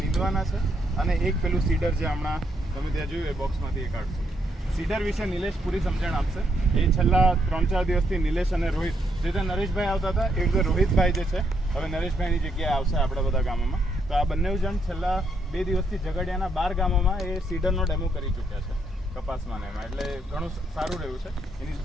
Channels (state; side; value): normal; both; correlation 0.75